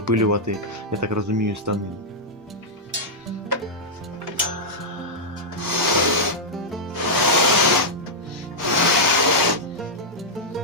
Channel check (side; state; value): both; normal; correlation -0.07